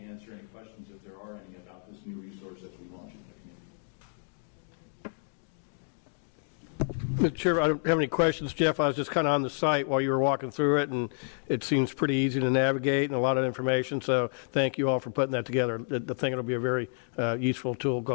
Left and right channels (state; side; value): silent; right; digital silence